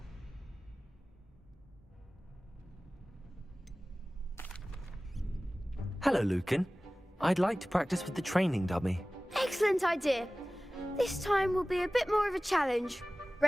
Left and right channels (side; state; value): both; normal; correlation 0.97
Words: Hello, Lucan. I'd like to practice with the training dummy. Excellent idea. This time will be a bit more of a challenge.